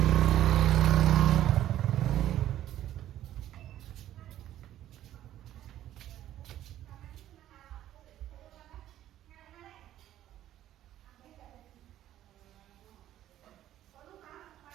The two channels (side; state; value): left; quieter; 12.6 dB